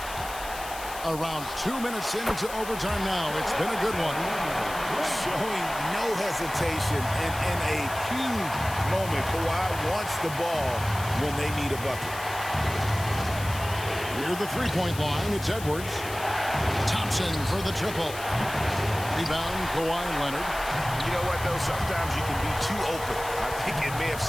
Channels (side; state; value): left; noise; hiss, 12 dB below the sound